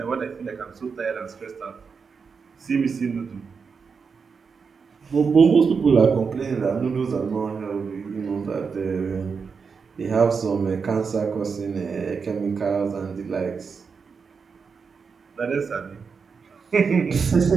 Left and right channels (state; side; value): quieter; left; 5.5 dB